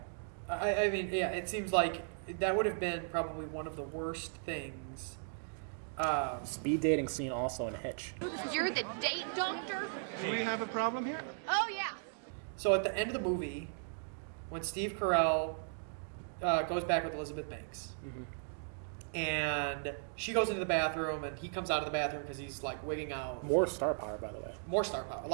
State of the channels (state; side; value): silent; left; digital silence